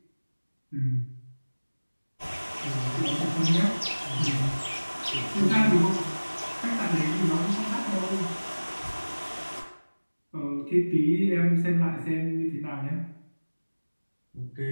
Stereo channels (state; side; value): inverted; both; correlation -1.00